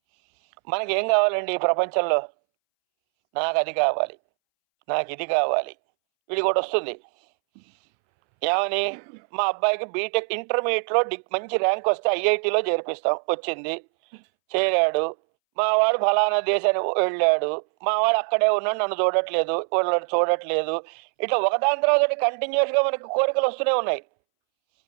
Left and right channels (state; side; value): silent; left; 63 dB below the other